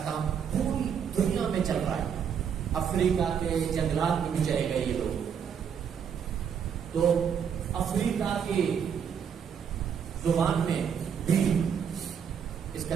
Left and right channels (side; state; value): left; quieter; 7.6 dB